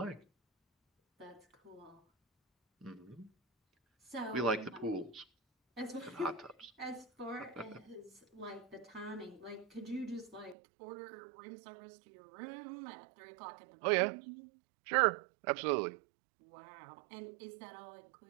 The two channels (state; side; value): drops out; left; at 10.6 s